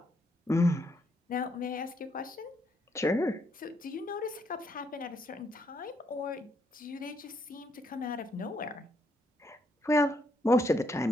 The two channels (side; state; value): both; normal; correlation 0.74